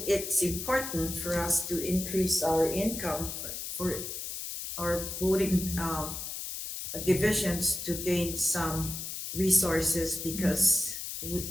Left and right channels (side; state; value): left; noise; hiss, 6 dB below the sound